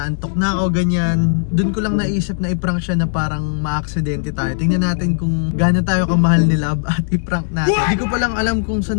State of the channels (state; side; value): silent; right; digital silence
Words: na ako, ganyan. Doon ko lang naisip na i-prank siya na parang ma-aksidente tayo. Tingnan natin kung gaano tayo kamahal ni Love at i-prank natin. Hindi ko palang alam kung